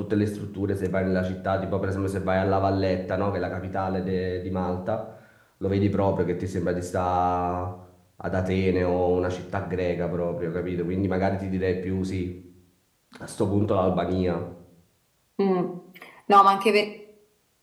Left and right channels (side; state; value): both; identical; correlation 1.00